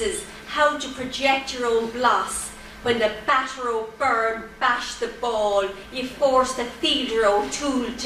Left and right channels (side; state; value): both; identical; correlation 1.00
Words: how to project your own bloss. When the batter O'Byrne bashed the ball, you forced the fielder O'Toole